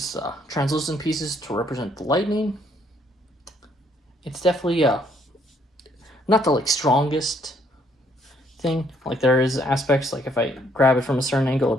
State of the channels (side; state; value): both; normal; correlation 0.68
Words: translucent pieces to represent the lightning. It's definitely not the like strongest thing. Like there is aspects, like if I grab it from a certain angle,